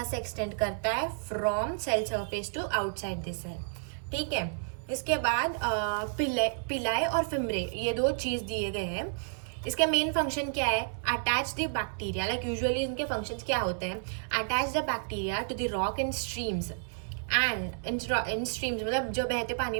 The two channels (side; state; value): left; silent; 57 dB below the other